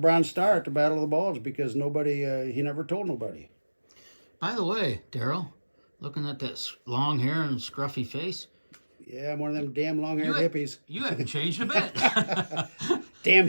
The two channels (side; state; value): both; inverted; correlation -1.00